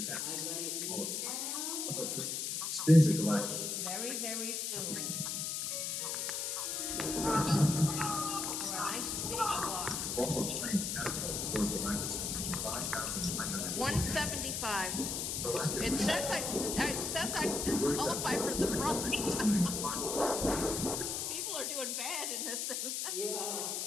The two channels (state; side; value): noise; left; hiss, 1 dB below the sound